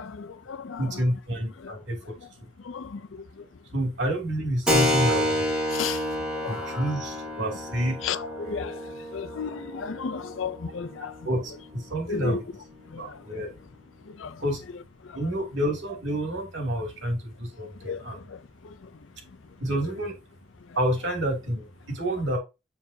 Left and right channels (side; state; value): both; normal; correlation 0.51